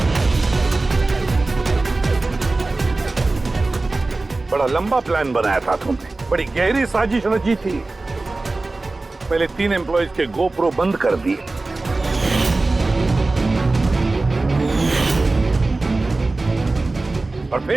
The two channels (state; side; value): quieter; left; 3.3 dB